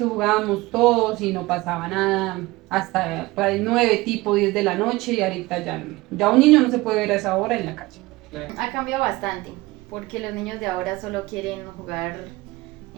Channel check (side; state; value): left; quieter; 20.8 dB